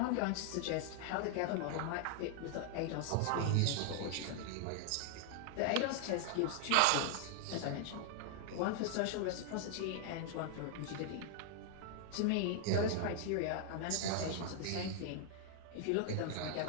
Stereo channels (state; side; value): different; both; correlation 0.00